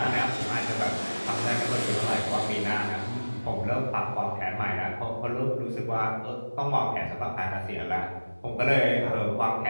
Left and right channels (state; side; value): inverted; both; correlation -1.00